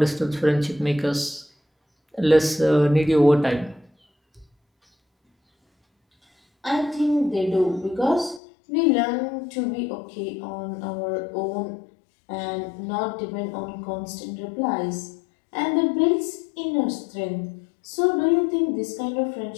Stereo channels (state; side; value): drops out; right; at 8.4 s